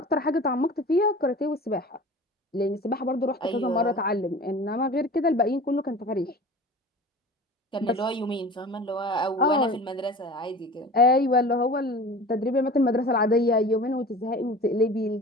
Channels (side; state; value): both; normal; correlation 0.39